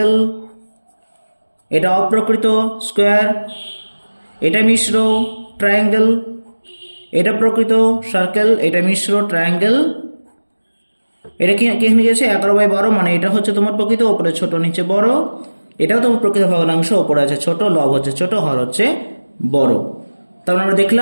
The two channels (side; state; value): both; inverted; correlation -1.00